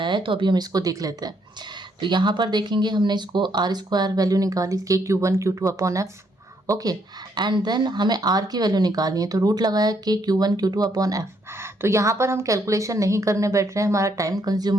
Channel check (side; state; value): both; normal; correlation 0.72